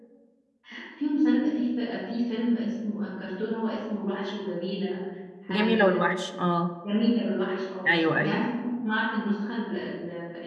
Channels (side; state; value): both; identical; correlation 1.00